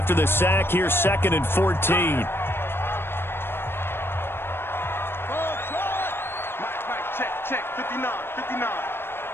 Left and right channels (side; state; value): right; late; 0.11 ms